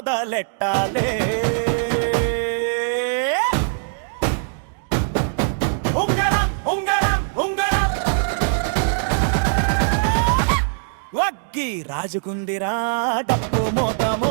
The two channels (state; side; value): silent; left; digital silence